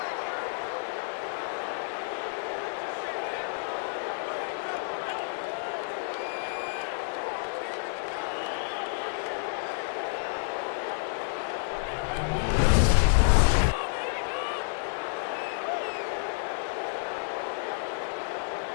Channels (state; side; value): silent; right; 58 dB below the other